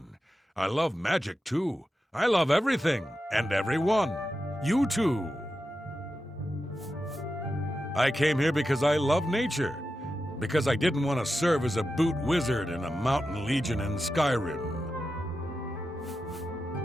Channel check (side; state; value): both; normal; correlation 0.90